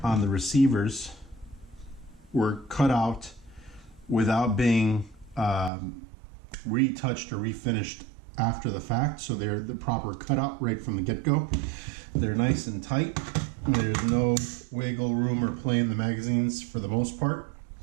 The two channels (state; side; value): drops out; left; at 5.7 s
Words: on the receivers were cut out without being retouched or refinished after the fact, so they're the proper cutout right from the get-go. They're nice and tight. There's no wiggle room or play in the magazines for the most part.